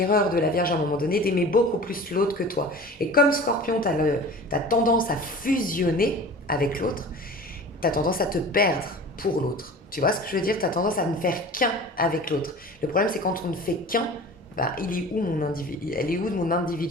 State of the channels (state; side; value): normal; both; correlation 0.39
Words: de la Vierge à un moment donné d'aimer beaucoup plus l'autre que toi. Et comme Scorpion, tu as tendance à fusionner avec l'autre, tu as tendance à te perdre pour l'autre. Tu vois ce que je veux dire? Tu as tendance à ne faire qu'un avec l'autre. Le problème, c'est quand on ne fait qu'un, bah, elle est où de mon